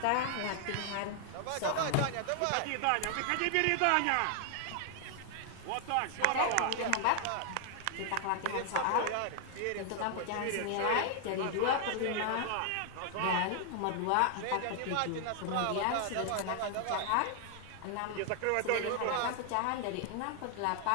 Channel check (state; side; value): different; both; correlation 0.00